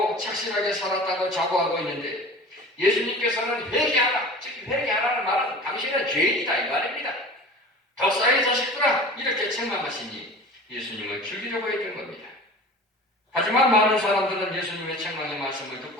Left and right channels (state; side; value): normal; both; correlation 0.39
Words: 착실하게 살았다고 자부하고 있는데 예수님께서는 회개하라, 즉 회개하라는 말은 당신은 죄인이다 이 말입니다. 덕사의 자식들아 이렇게 책망하시니 예수님을 죽이려고 했던 겁니다. 하지만 많은 사람들은 예수님의 책망의 말씀을